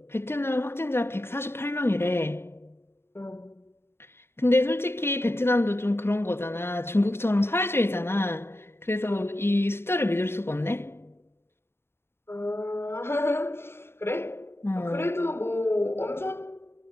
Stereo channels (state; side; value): late; right; 0.12 ms